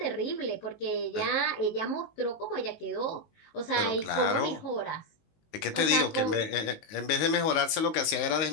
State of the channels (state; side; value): late; right; 19 ms